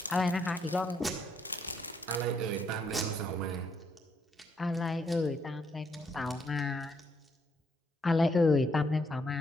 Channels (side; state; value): both; normal; correlation 0.74